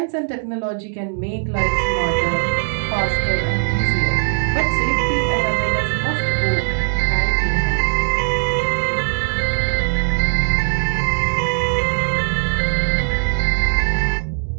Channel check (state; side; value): silent; left; 66 dB below the other